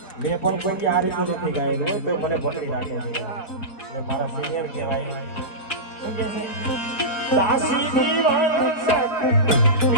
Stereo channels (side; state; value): right; late; 4.5 ms